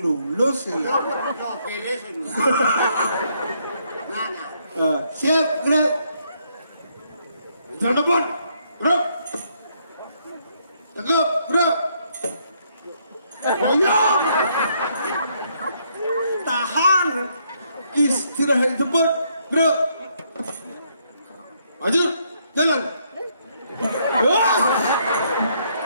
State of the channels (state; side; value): inverted; both; correlation -0.72